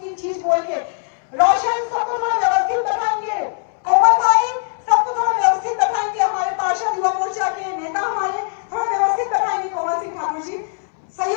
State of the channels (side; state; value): right; silent; digital silence